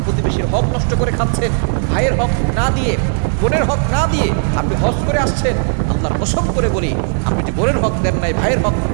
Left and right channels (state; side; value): silent; left; 58 dB below the other